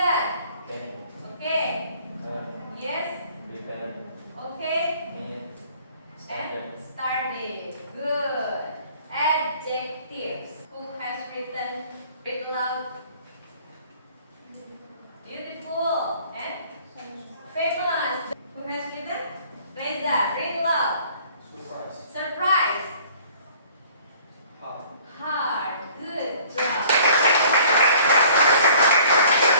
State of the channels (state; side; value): inverted; both; correlation -0.53